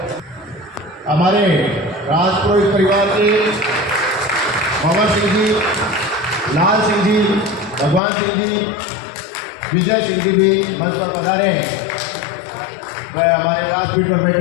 हमारे राजपुरोहित परिवार के पवन सिंह जी, लाल सिंह जी, भगवान सिंह जी, विजय सिंह जी भी मंच पर पधारे हैं। वह हमारे व्यासपीठ पर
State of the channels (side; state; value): right; drops out; at 8.0 s